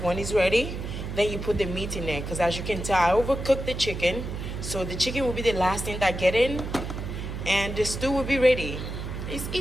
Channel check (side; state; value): right; noise; hum, 6 dB below the sound